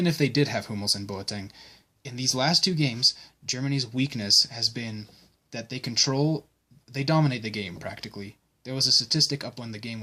if they did have Hummels and Boateng, in these last two games, Germany's weakness has been that they dominate the game, practically. There was a statistic up when the game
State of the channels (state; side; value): identical; both; correlation 1.00